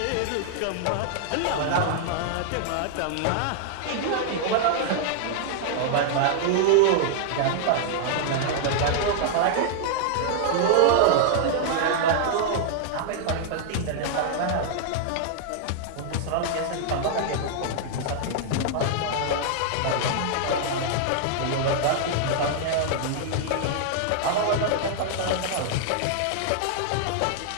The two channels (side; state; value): both; different; correlation -0.01